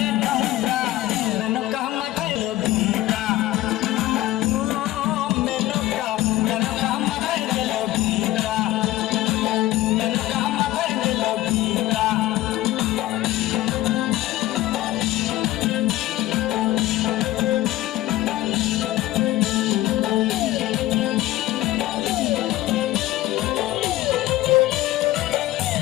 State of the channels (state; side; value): quieter; right; 15.7 dB